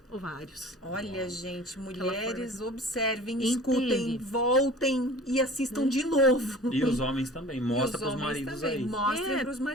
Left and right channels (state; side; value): normal; both; correlation 0.43